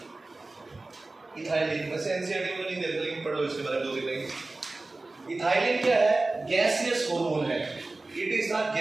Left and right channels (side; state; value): left; quieter; 3.2 dB